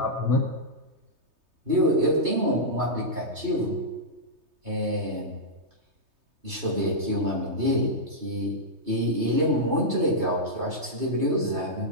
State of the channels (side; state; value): left; late; 3.2 ms